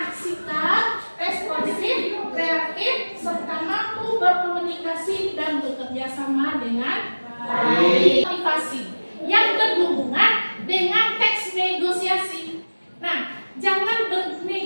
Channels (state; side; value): inverted; both; correlation -1.00